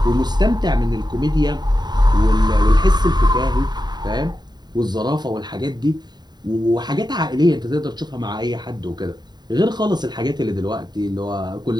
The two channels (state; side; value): late; left; 0.20 ms